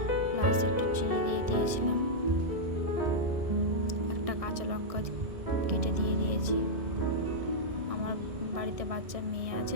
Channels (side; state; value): left; late; 1.6 ms